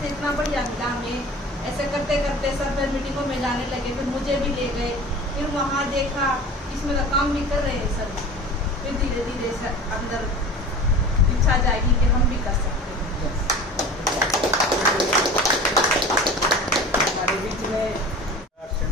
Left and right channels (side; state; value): both; normal; correlation 0.38